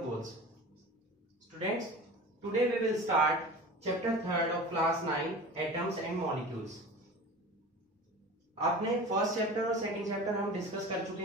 Students, today we will start chapter 3rd of class 9, atoms and molecules. आपने first chapter और second chapter हम discuss कर चुके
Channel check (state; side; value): normal; both; correlation 0.35